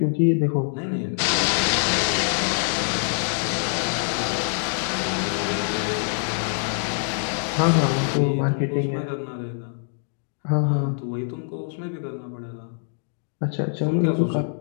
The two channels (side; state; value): right; silent; digital silence